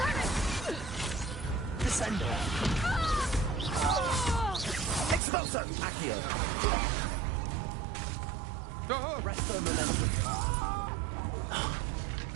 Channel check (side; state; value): left; drops out; at 5.2 s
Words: Descendo. Expulso! Accio. Resto momentum.